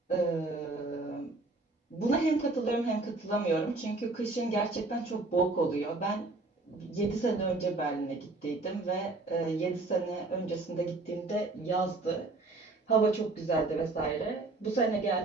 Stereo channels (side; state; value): left; quieter; 3.3 dB